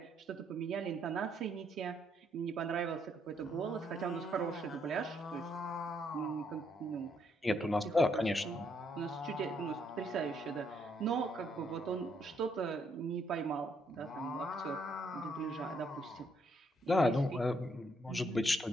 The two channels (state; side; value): normal; both; correlation 0.73